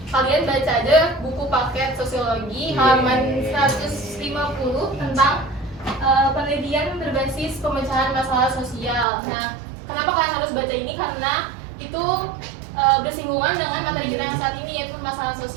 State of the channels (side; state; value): left; drops out; at 9.1 s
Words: Kalian baca aja buku paket sosiologi halaman 150 tentang penelitian berbasis pemecahan masalah sosial. Nah, kenapa kalian harus baca ini? Karena itu bersinggungan dengan materi kita yang saat ini, yaitu masalah